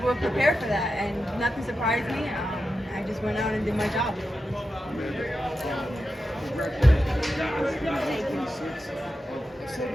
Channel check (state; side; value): normal; both; correlation 0.90